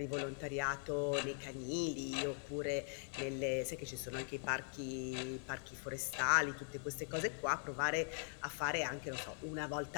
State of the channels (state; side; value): silent; right; 50 dB below the other